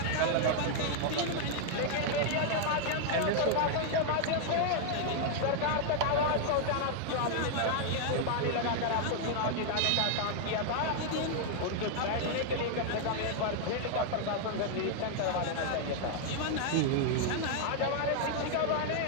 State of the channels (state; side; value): different; both; correlation 0.00